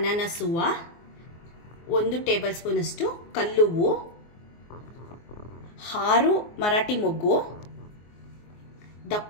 ಹೂವು, 1 ಟೇಬಲ್ ಸ್ಪೂನಷ್ಟು ಕಲ್ಲುವ್ವು, 6 ಮರಾಠಿ ಮೊಗ್ಗು,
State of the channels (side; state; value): right; late; 24 ms